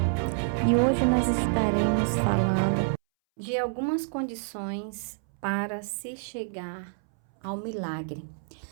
E hoje nós estaremos falando de algumas condições para se chegar ao milagre.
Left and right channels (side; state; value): left; silent; 60 dB below the other